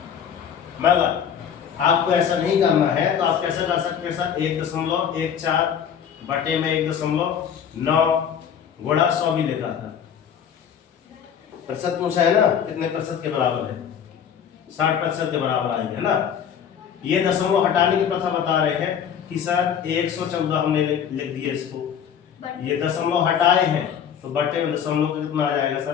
मगर आपको ऐसा नहीं करना है तो आप कैसे कर सकते हैं सर? 1.14 बटे में 1.9 गुणा 100 भी लिखा था, प्रतिशत पूछा है ना, कितने % के बराबर है? 60% के बराबर आएंगे, है ना? ये दशमलव हटाने की प्रथा बता रहे हैं कि सर 114 हमने लिख दिया इसको, ये दशमलव हटाए हैं तो बटे में दशमलव कितना आ जाएगा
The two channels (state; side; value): quieter; right; 8.3 dB